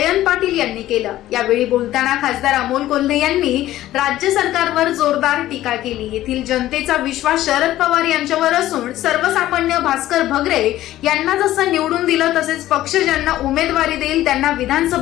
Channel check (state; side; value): quieter; right; 14.4 dB